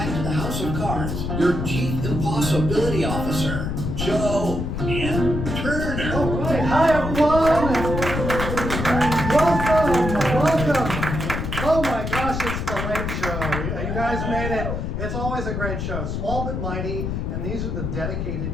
to the House of Cards, your Chief Impossibility Officer, Joe M. Turner. All right, hi everyone. Welcome. Oh my gosh, it's the late show. You guys made it. It's always a great show, small but mighty, and these are the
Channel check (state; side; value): noise; left; rumble, 3 dB below the sound